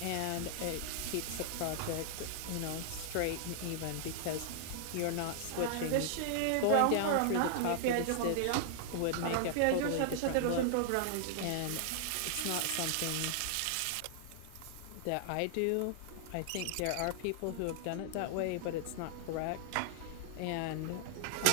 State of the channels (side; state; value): both; different; correlation -0.01